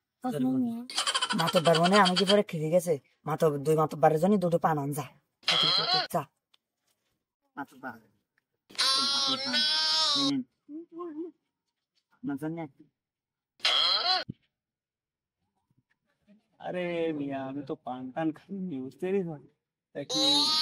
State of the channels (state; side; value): identical; both; correlation 1.00